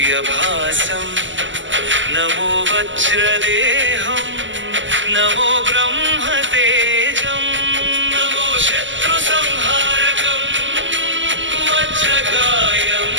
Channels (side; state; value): left; late; 0.55 ms